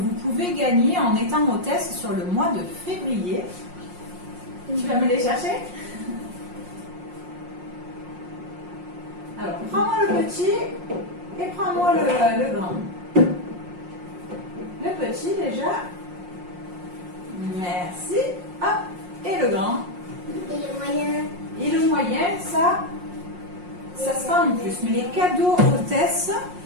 pouvez gagner en étant hôtesse sur le mois de février. Tu vas me les chercher? Alors, prends-moi le petit et prends-moi le grand. Le petit déjà. Merci. Hop. Et le grand. Et le moyen. Et le moyen, ça sera en plus. Mais les cadeaux hôtesses,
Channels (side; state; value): left; late; 5.6 ms